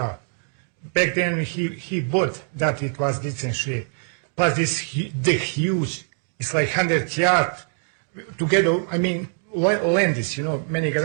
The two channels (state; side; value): silent; left; 62 dB below the other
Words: Back then, he bought that it was decent shape. Plus the huge, it's like 100 yards together. I mean, land is, many